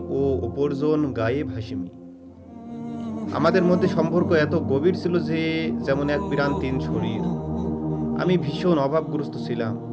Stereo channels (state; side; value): identical; both; correlation 1.00